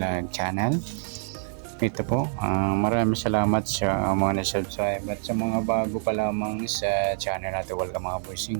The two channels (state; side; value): silent; left; digital silence